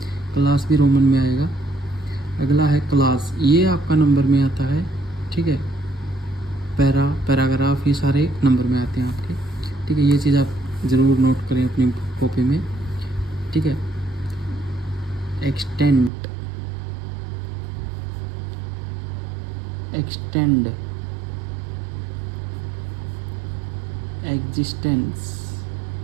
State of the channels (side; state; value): left; drops out; at 16.1 s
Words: क्लास भी रोमन में आएगा। अगला है क्लास, ये आपका नंबर में आता है, ठीक है। पैराग्राफ ये सारे नंबर में आते हैं आपके, ठीक है। ये चीज़ आप ज़रूर नोट करें अपनी कॉपी में, ठीक है। एक्सटेंड, एग्जिस्टेंस,